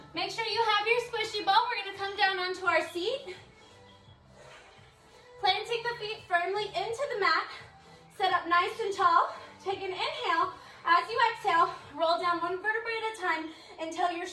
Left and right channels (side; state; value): both; identical; correlation 1.00